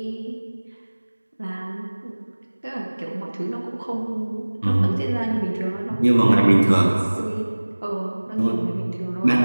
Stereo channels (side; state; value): both; inverted; correlation -1.00